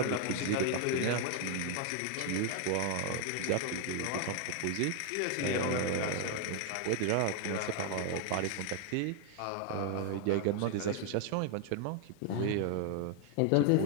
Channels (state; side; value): different; both; correlation 0.00